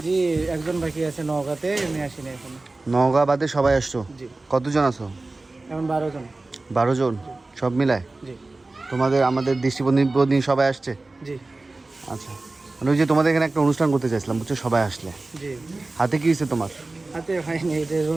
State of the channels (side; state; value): left; quieter; 3.2 dB